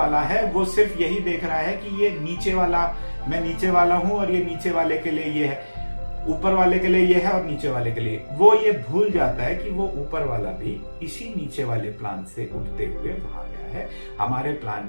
है, वो सिर्फ यही देख रहा है कि ये नीचे वाला, मैं नीचे वाला हूं और ये नीचे वाले के लिए ये है, ऊपर वाले के लिए ये है और नीचे वाले के लिए। वो ये भूल जाता है कि वो ऊपर वाला भी इसी नीचे वाले प्लान से उठते हुए वहां गया है। हमारे प्लान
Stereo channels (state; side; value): inverted; both; correlation -1.00